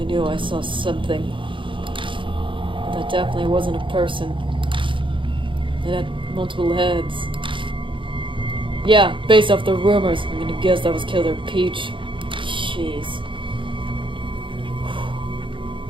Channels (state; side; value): late; left; 0.24 ms